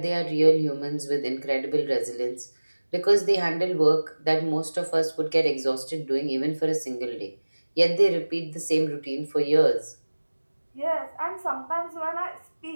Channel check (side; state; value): both; inverted; correlation -1.00